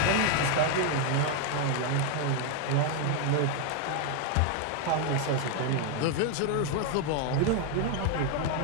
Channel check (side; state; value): both; different; correlation 0.01